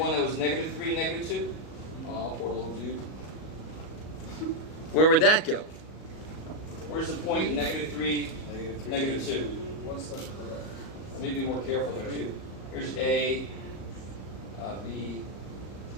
that was -3, -2. Oh, poor little dude. Where would that go? Where's the point -3, -2? One step to the left. Let me be more careful there too. Here's A, B,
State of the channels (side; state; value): right; late; 38 ms